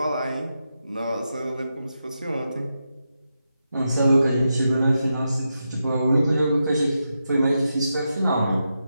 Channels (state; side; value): inverted; both; correlation -0.87